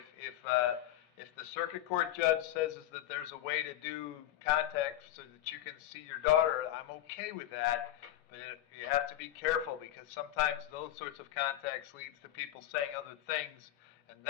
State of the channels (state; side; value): quieter; right; 13.1 dB